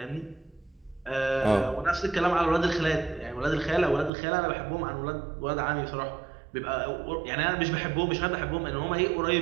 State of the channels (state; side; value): drops out; left; at 4.1 s